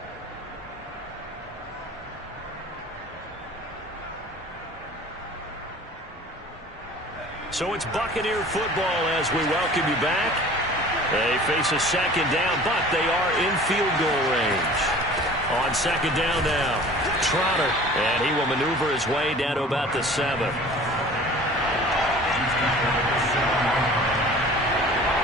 So it's Buccaneer football as we welcome you back. They face a 2nd down, but they are in field goal range. On 2nd down now, Trotter, and he will maneuver his way down to about the 7.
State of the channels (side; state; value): both; normal; correlation 0.45